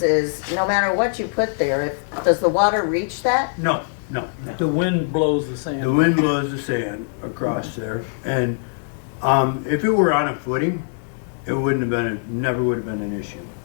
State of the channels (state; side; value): silent; right; 64 dB below the other